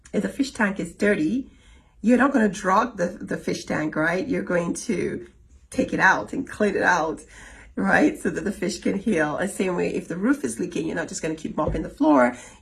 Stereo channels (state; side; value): identical; both; correlation 1.00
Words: if the fish tank is dirty, you're not going to drug the fish tank, right? You're going to take it out and clean it out, right? So that the fish can heal. And same way, if the roof is leaking, you're not just going to keep mopping the floor.